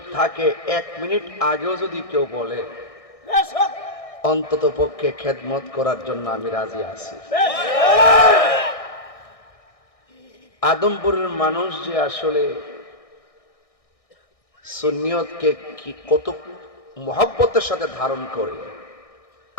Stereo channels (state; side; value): late; right; 1.6 ms